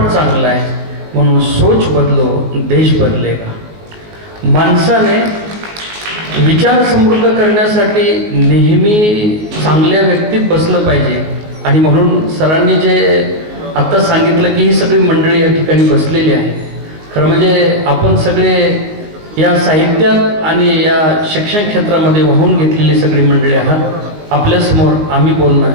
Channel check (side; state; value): left; late; 19 ms